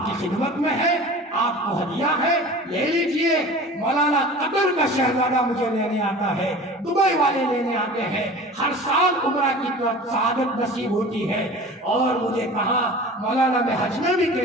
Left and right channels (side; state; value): both; normal; correlation 0.39